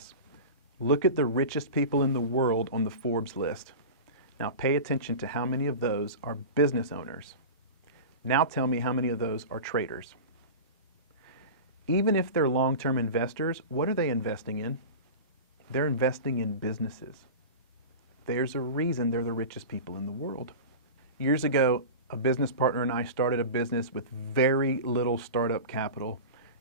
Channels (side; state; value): both; inverted; correlation -0.30